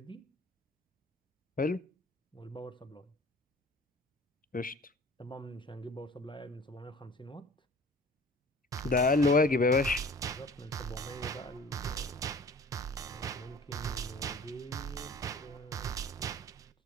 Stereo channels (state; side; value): normal; both; correlation 0.46